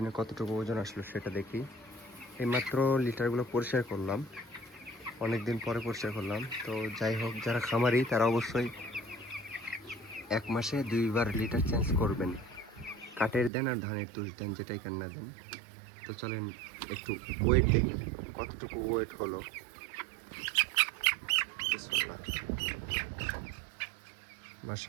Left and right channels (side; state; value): left; drops out; at 13.5 s